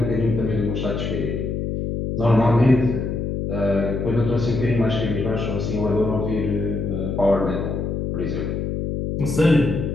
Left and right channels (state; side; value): noise; left; hum, 2 dB below the sound